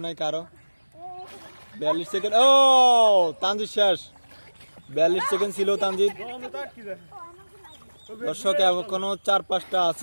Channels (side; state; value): both; inverted; correlation -1.00